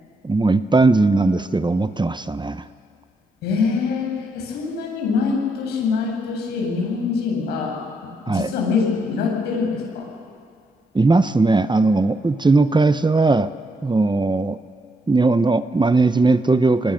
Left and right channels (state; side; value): normal; both; correlation 0.79